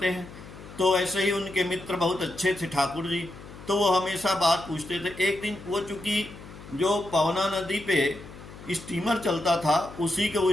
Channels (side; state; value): left; noise; hum, 16 dB below the sound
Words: हैं। तो ऐसे ही उनके मित्र बहुत अच्छे थे ठाकुर जी, तो वो हमेशा बात पूछते थे। एक दिन वो, चूँकि जो पवना नदी पे स्टीमर चलता था, उसी के